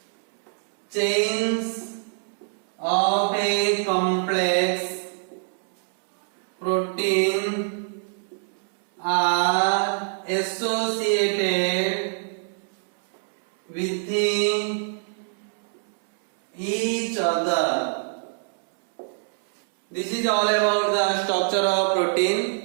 chains of a complex protein are associated within each other. This is all about the structure of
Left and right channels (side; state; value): left; silent; 62 dB below the other